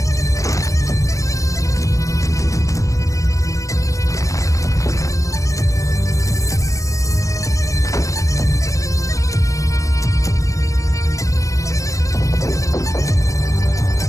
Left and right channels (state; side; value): late; right; 0.16 ms